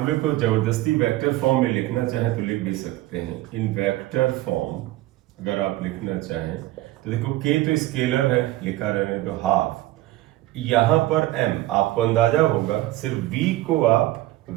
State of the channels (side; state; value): left; quieter; 16.9 dB